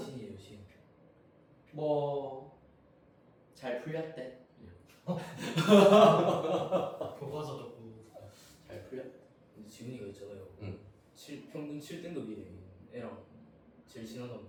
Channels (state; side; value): identical; both; correlation 1.00